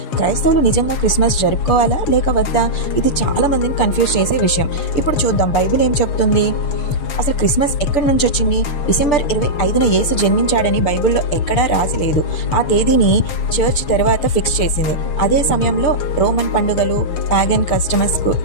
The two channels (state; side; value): late; right; 6.8 ms